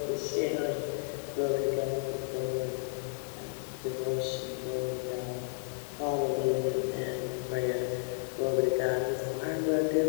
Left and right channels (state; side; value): silent; right; 56 dB below the other